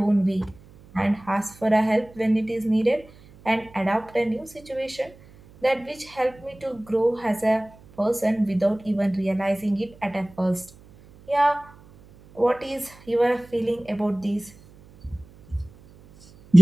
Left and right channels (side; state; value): right; noise; hum, 24 dB below the sound